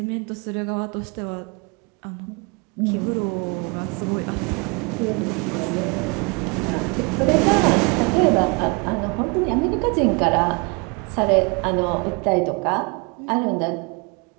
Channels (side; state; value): left; quieter; 31.1 dB